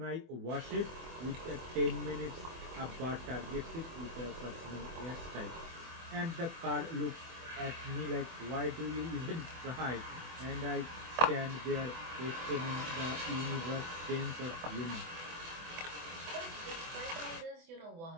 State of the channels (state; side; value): late; left; 24 ms